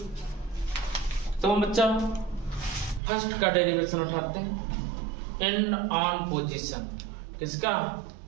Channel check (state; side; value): drops out; left; at 3.0 s